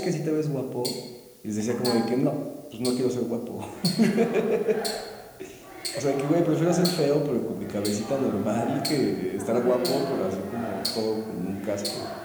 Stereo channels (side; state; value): both; identical; correlation 1.00